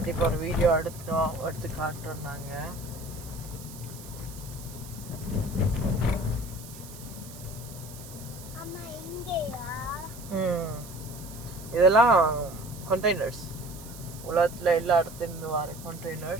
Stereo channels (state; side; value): noise; right; hiss, 16 dB below the sound